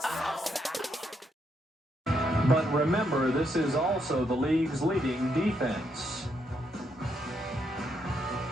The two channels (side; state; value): both; normal; correlation 0.77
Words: But remember, this is also the league's leading defense.